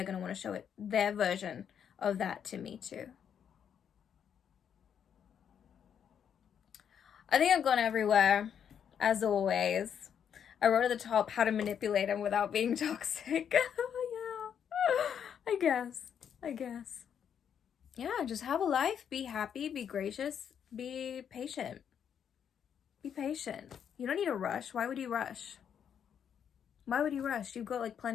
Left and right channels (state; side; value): quieter; right; 8.3 dB